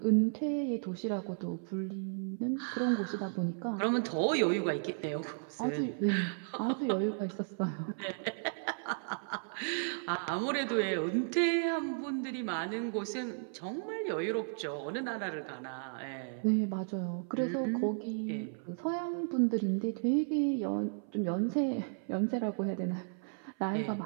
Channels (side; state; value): left; silent; 55 dB below the other